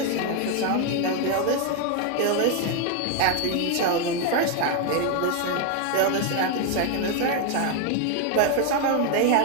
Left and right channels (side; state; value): both; different; correlation 0.01